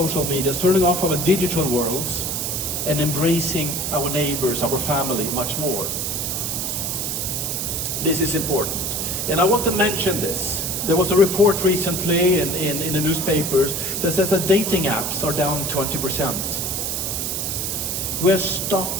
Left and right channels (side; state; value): right; noise; hiss, 2 dB below the sound